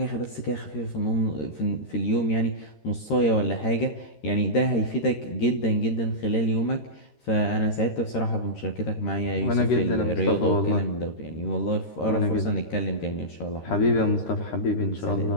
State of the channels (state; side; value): late; right; 13 ms